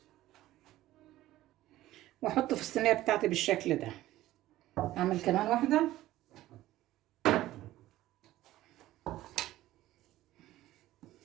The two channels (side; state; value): left; quieter; 15.3 dB